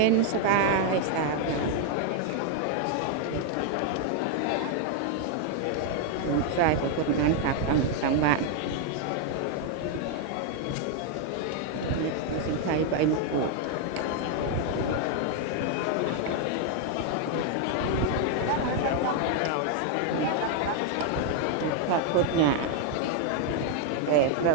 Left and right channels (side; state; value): both; different; correlation 0.00